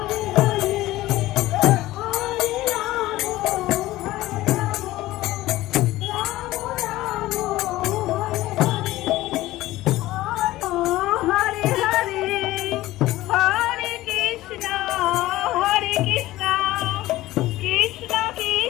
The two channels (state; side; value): quieter; right; 16.7 dB